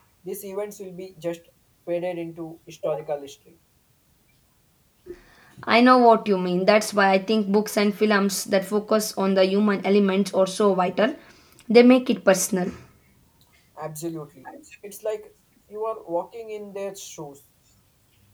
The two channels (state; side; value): identical; both; correlation 1.00